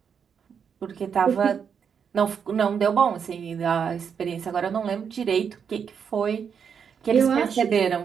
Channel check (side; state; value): left; quieter; 7.1 dB